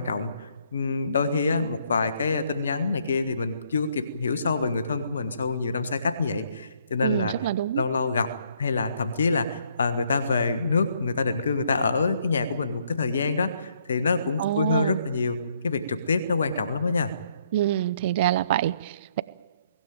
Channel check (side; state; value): both; inverted; correlation -0.69